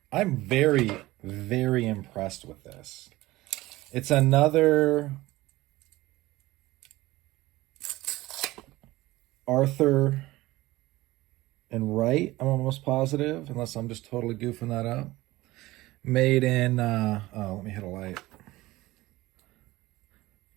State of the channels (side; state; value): left; quieter; 18.5 dB